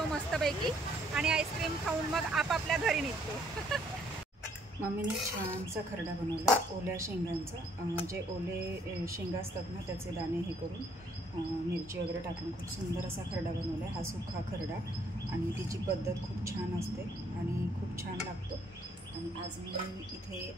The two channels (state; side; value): normal; both; correlation 0.66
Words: मस्तपैकी आणि आईस्क्रीम खाऊन मग आपापल्या घरी निघतो। मम्मीने छानसा खरडा बनवला ओल्या शेंगांचा, जे ओले शेंगा असतात ना त्याचे दाणे हे करून मिरची वगैरे टाकून खूप सुंदर असा खरडा बनवला आहे। हा सुखा खरडा आणि तिची पद्धत खूप छान असते आणि खूप छान लागतो। आणि आज मी इथे